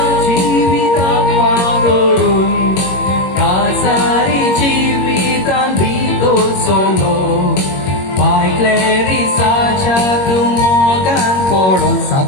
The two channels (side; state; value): right; late; 21 ms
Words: chivitan parorun Kasari chivitan bito solo By Clarissa chatumogan poron